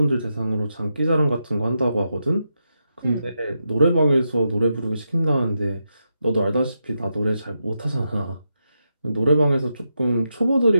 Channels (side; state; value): both; inverted; correlation -0.85